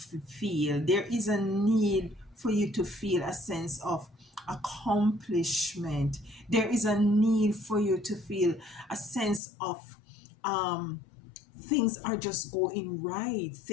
There is a need for you to feel a sense of accomplishment. There is a need for you to feel a sense of um, things are just going right.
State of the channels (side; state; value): right; drops out; at 9.4 s